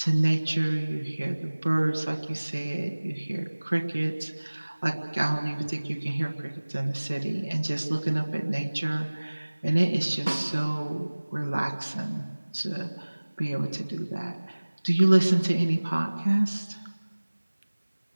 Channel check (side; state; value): both; inverted; correlation -1.00